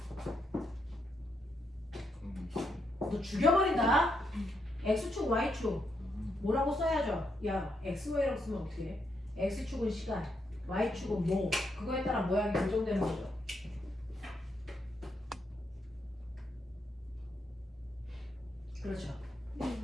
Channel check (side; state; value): both; normal; correlation 0.79